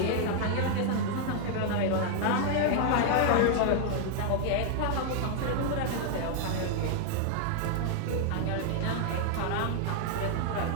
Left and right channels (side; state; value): both; different; correlation 0.00